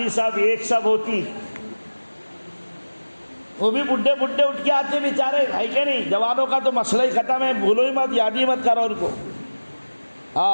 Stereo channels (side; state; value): both; inverted; correlation -1.00